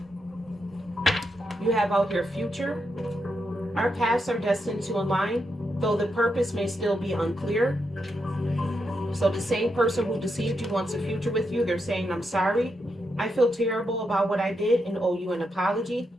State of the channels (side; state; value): both; normal; correlation 0.83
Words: You have out here future. Our paths are destined to align, though the purpose may still be unclear. So the same person who deceived you wants a future with you. They're saying, I'm sorry. I feel terrible about what I did and owe you an apology.